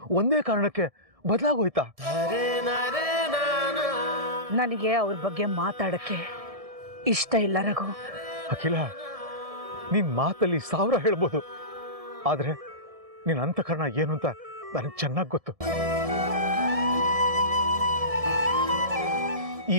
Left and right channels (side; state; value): left; late; 1.7 ms